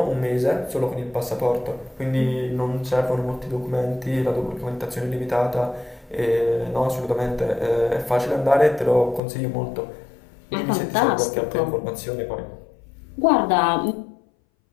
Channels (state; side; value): drops out; right; at 9.2 s